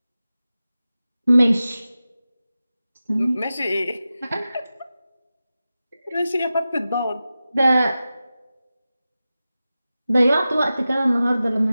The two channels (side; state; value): both; inverted; correlation -0.94